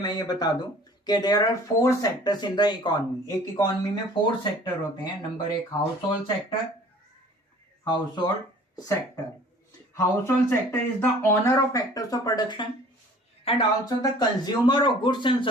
ये बता दूं कि there are 4 sectors in the economy. एक इकोनॉमी में 4 सेक्टर होते हैं। Number 1 household sector, Household sector is the owner of factors of production and also the consumer of goods and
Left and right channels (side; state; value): both; normal; correlation 0.50